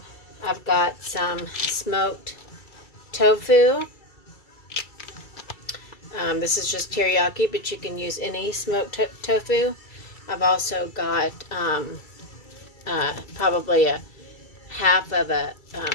got some smoked tofu. This is just teriyaki, but you can use any smoked tofu. I've also got probably a half of a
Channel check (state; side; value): late; right; 2.3 ms